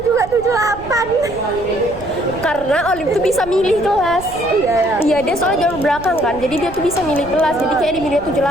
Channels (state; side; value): noise; right; rumble, 15 dB below the sound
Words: juga 78. Karena Olive tuh bisa milih kelas. Iya, dia soalnya jalur belakang kan, jadi dia tuh bisa milih kelas. Jadi kayak di milih